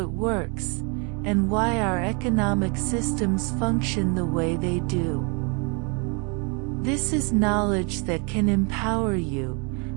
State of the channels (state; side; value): quieter; left; 33.4 dB